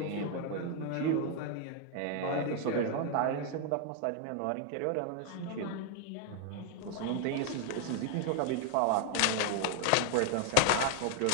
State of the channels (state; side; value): different; both; correlation 0.00